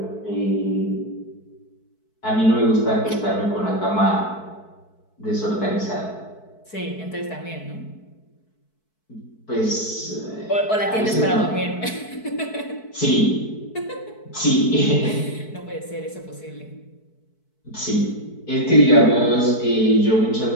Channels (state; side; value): late; right; 4.6 ms